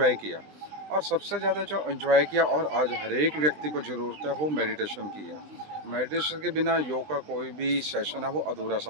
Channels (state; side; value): late; left; 20 ms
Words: किया। और सबसे ज़्यादा जो एंजॉय किया और आज हर एक व्यक्ति को ज़रूरत है वो मेडिटेशन की है। मेडिटेशन के बिना योग का कोई भी सेशन है वो अधूरा